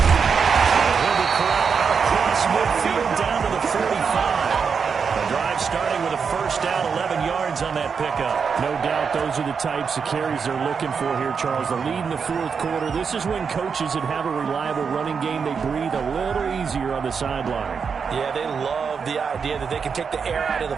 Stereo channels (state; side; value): quieter; left; 6.0 dB